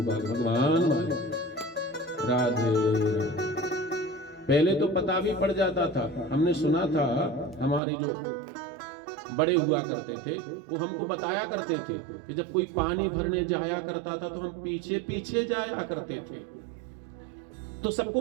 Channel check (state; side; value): drops out; left; at 7.8 s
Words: भगवान वाले। राधे राधे। पहले तो पता भी पड़ जाता था। हमने सुना था हमारे जो बड़े हुआ करते थे वो हमको बताया करते थे कि जब कोई पानी भरने जाया करता था तो हम पीछे पीछे जाया करते थे। तो सबको